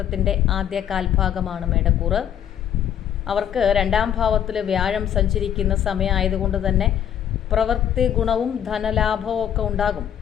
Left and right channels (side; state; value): right; quieter; 9.8 dB